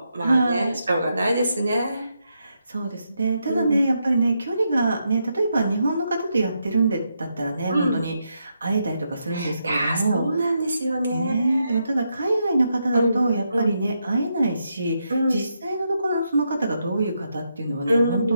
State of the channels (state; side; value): inverted; both; correlation -0.82